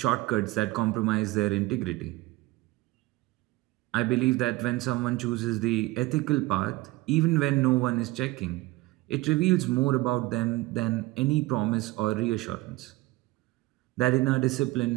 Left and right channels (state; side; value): quieter; left; 19.8 dB